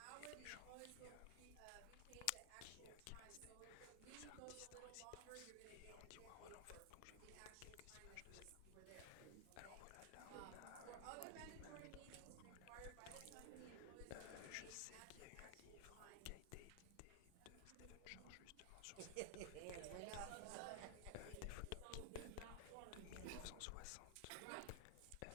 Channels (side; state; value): both; different; correlation 0.00